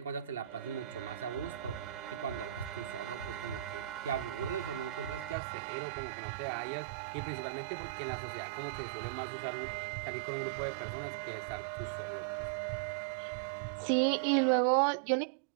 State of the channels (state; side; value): drops out; left; at 5.4 s